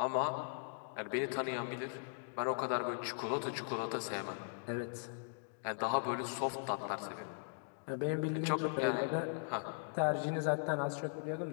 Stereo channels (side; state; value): right; silent; digital silence